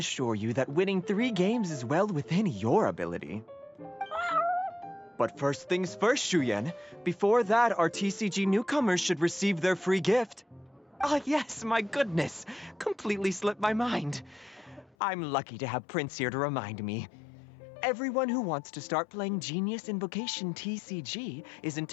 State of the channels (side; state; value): right; drops out; at 15.0 s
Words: you that winning 3 games is well within your ability. But first things first, Shuyen. Before that, our TCG newcomers should receive their free gift. Ah, yes, my goodness. Completely slipped my mind. I'm lucky to have Prince here to remind me. Everyone who wants to start playing Genius Invocation TCG is